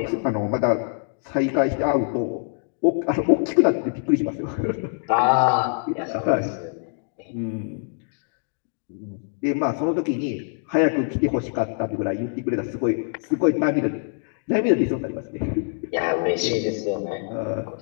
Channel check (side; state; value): right; silent; digital silence